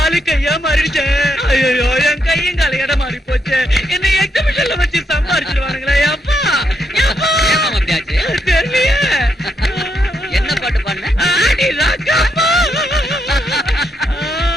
கையா மாறிடுச்சு. ஐயோ, என் கையும் கால இடம் மாறி போச்சு. என்ன எக்ஸிபிஷன்ல வச்சு சம்பாரிச்சிருவானுங்களே. அப்பா தெரியலையே. என்ன பாட்டு பாடுன? ஆடி ராக்கம்மா,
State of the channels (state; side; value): normal; both; correlation 0.79